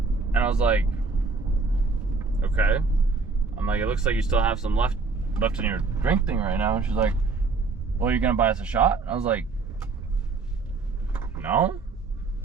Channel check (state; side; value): quieter; left; 4.2 dB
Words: And I was like, okay. I'm like, it looks like you still have some left in your drink thing right now. And she's like, well, you're gonna buy us a shot? I was like, no.